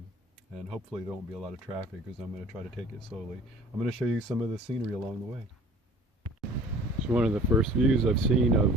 and hopefully there won't be a lot of traffic because I'm going to try to take it slowly. I'm going to show you some of the scenery along the way. It's one of the first views I've seen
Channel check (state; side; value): normal; both; correlation 0.48